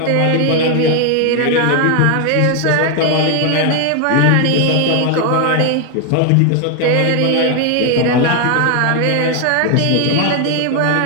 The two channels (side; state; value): both; different; correlation 0.01